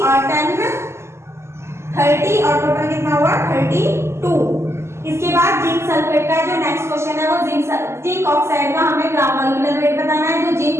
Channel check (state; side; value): late; left; 0.13 ms